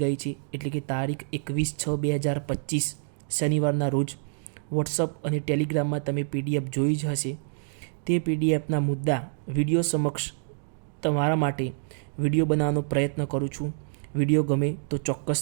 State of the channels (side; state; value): left; silent; digital silence